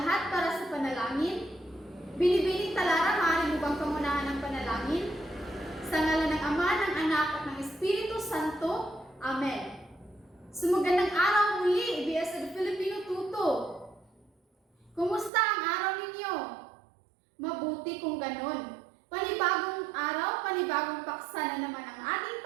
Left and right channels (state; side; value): drops out; left; at 15.3 s